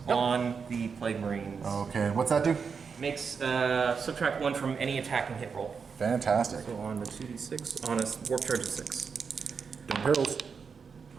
on the Plague Marines. Okay, and what's that do? Makes subtract 1 from any attack and hit roll. Fantastic. So on the 2d6, on a warp charge of 6. Don't perils.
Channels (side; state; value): left; quieter; 5.8 dB